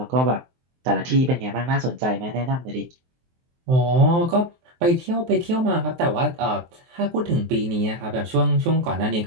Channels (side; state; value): left; late; 23 ms